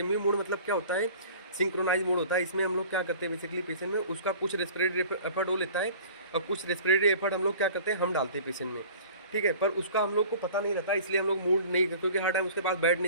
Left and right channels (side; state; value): both; inverted; correlation -0.44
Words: मोड मतलब क्या होता है, सिंक्रोनाइज मोड होता है। इसमें हम लोग क्या करते हैं बेसिकली, पेशेंट में उसका कुछ रेस्पिरेटरी एफर्ट वो लेता है और कुछ रेस्पिरेटरी एफर्ट हम लोग क्या करते हैं, हम डालते हैं पेशेंट में, ठीक है। पर उसका हम लोग को पता नहीं रहता, इसलिए हम लोग मूड नहीं, क्योंकि हर टाइम उसके पास बैठ